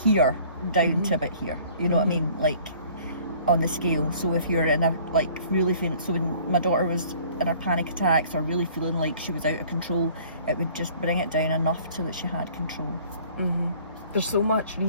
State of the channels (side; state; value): both; inverted; correlation -0.53